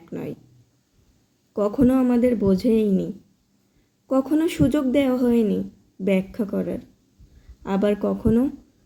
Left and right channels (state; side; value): identical; both; correlation 1.00